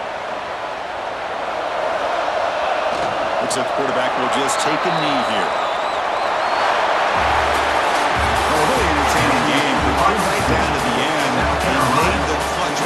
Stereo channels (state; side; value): identical; both; correlation 1.00